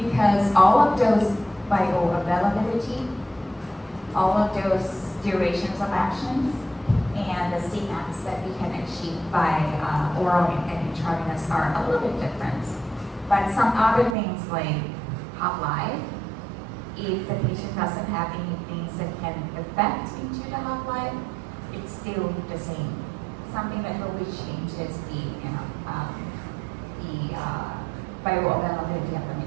all of those bioavailability, all of those durations of actions, and the Cmax that we can achieve by oral and intravenous are a little bit different. But some other things like half-life, if the patient doesn't have any things that can affect into the half-life, it's still the same. Something that really changes the bioavailability of the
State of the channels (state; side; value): drops out; left; at 14.2 s